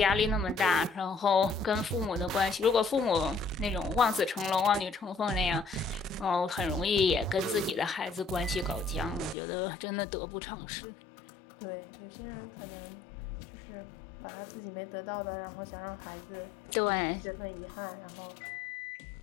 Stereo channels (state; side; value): drops out; right; at 9.3 s